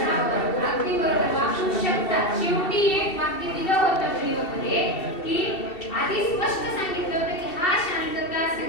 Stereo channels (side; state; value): right; late; 2.7 ms